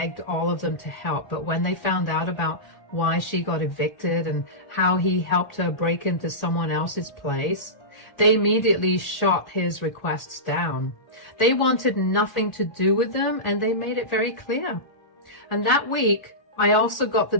all of them to help, but when they found out about why she got evicted and how he helped her break into someone else's place, they immediately shot his requests down. They wanted nothing to do with them, and they made it very clear. And that week, I also got the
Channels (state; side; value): late; right; 1.8 ms